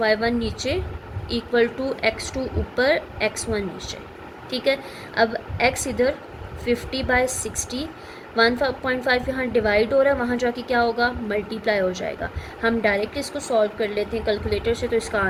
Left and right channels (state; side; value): identical; both; correlation 1.00